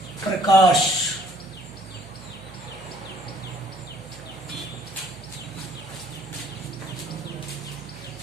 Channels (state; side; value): noise; right; hum, 19 dB below the sound